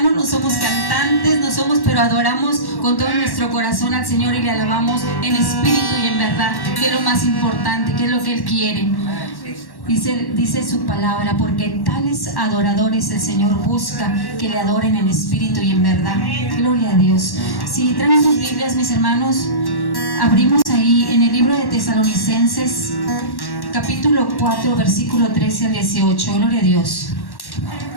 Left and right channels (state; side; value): late; right; 1.1 ms